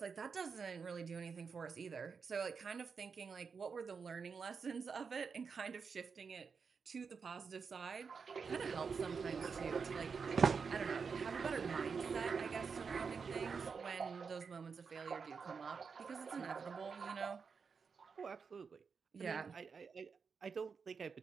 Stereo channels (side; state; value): left; quieter; 5.6 dB